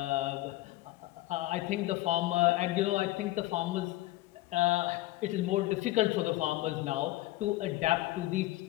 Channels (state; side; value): quieter; right; 17.2 dB